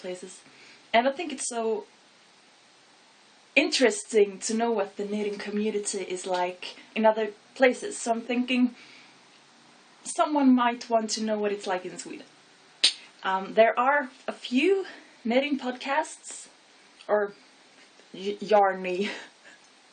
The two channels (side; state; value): both; identical; correlation 1.00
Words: And I think it's so interesting to know what the knitting community is like in other places. So I'm thinking someone might want to know what it's like in Sweden. There are a few knitting podcasts or yarny